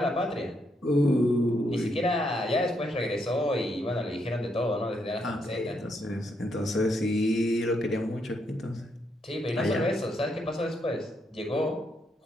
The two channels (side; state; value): both; normal; correlation 0.77